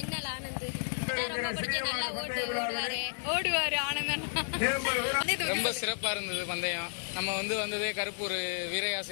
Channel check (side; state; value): right; silent; digital silence